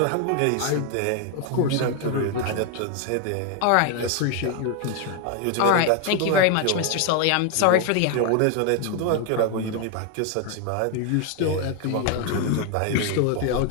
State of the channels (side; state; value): both; different; correlation 0.01